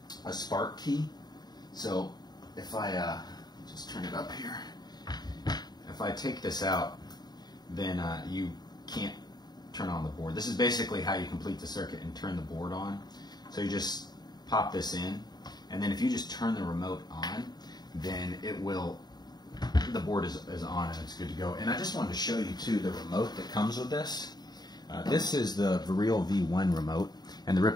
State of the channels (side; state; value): right; late; 0.20 ms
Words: spark key. So if I just turn it up here, if I take this out, then you can't turn on the board. This is basically how you complete the circuit and turn the board on. So you just pop this in, and then if you just turn the remote on, then it will, the board is on and it's good to go. And I just wanted to show you too the remote that comes with this. This is the Viril V1 remote, and the